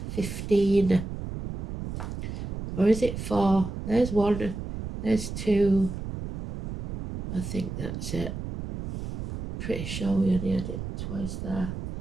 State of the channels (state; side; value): noise; right; rumble, 7 dB below the sound